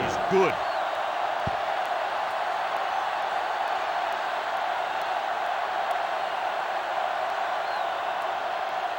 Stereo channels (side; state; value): both; identical; correlation 1.00